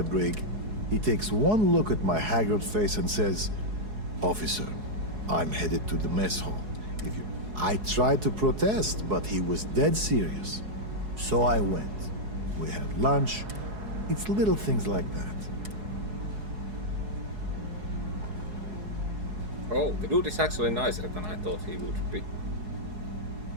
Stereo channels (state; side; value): late; left; 4.7 ms